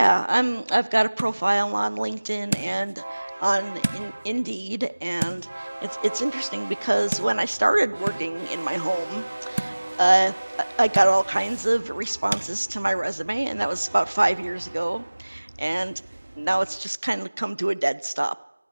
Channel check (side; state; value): both; inverted; correlation -1.00